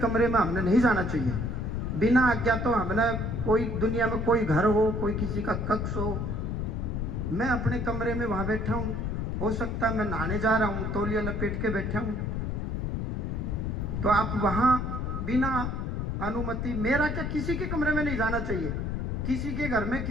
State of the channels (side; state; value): left; noise; rumble, 2 dB below the sound